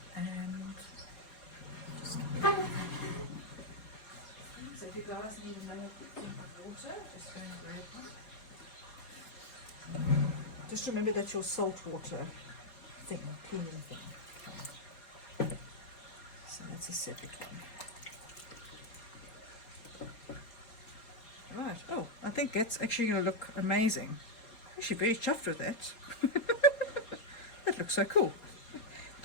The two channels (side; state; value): right; late; 4.3 ms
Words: And just so if you guys need another thing of water, just go and grab one. Just remember that's your salt water thing, cleaning thing. Okay. So that's a separate one. Right. Oh, I think that's actually going to look amazing. Actually very chuffed with that. That looks so cool.